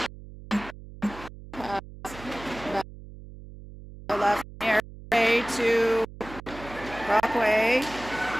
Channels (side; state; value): right; noise; hum, 16 dB below the sound